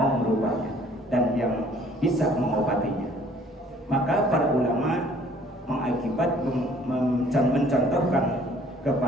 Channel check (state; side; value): normal; both; correlation 0.57